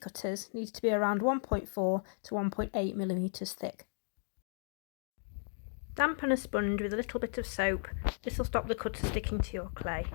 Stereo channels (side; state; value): right; silent; digital silence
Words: needs to be around 1.4 to 1.8 millimetres thick. Dampen a sponge with a little bit of soap. This will stop the cutter sticking to your clay.